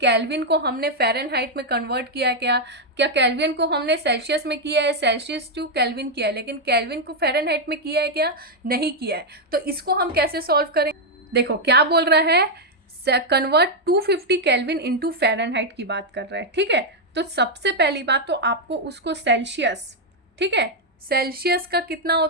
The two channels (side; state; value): both; normal; correlation 0.00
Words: को हमने फ़ारेनहाइट में कन्वर्ट किया है, क्या केल्विन को हमने सेल्सियस में किया है, सेल्सियस टू केल्विन किया है, लेकिन केल्विन को फ़ारेनहाइट में किया है क्या, नहीं किया है। तो इसको हम कैसे सॉल्व करें, देखो क्या बोल रहा है, कन्वर्ट 250 केल्विन इंटू फ़ारेनहाइट की बात कर रहा है, ठीक है। तो सबसे पहली बात तो आपको उसको सेल्सियस, ठीक है, सेल्सियस का कितना